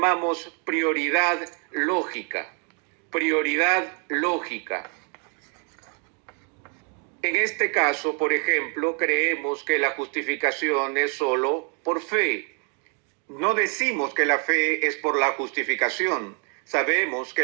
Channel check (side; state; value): left; quieter; 38.3 dB